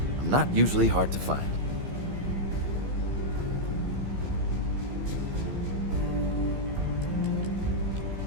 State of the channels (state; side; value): late; left; 15 ms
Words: I'm not usually hard to find.